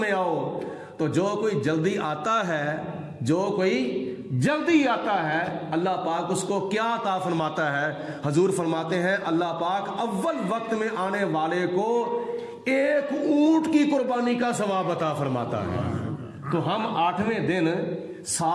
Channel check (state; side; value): identical; both; correlation 1.00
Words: آؤ۔ تو جو کوئی جلدی آتا ہے، جو کوئی جلدی آتا ہے، اللہ پاک اس کو کیا عطا فرماتا ہے؟ حضور فرماتے ہیں اللہ پاک اول وقت میں آنے والے کو ایک اونٹ کی قربانی کا ثواب عطا فرماتا ہے۔ تو ہم 8ویں دن